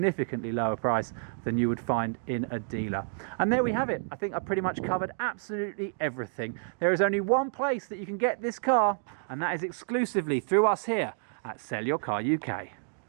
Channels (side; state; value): left; silent; 58 dB below the other